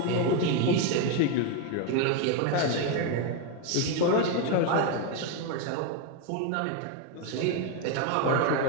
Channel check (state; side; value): different; both; correlation 0.02